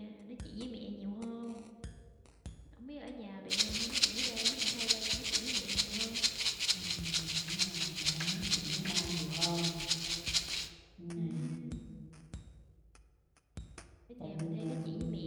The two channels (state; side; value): identical; both; correlation 1.00